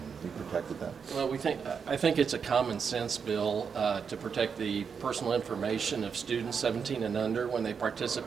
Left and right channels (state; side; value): quieter; left; 6.3 dB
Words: you protected them? Well, I think it's a common sense bill to protect the personal information of students 17 and under when they